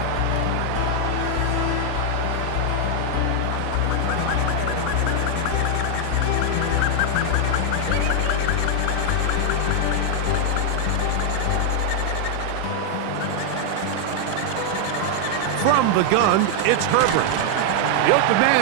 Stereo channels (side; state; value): both; different; correlation 0.00